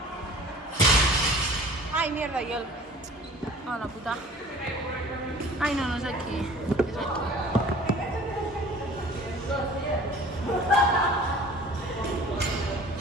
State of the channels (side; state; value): both; normal; correlation 0.45